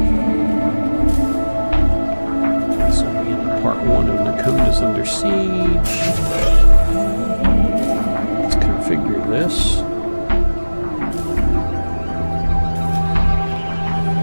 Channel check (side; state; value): both; inverted; correlation -1.00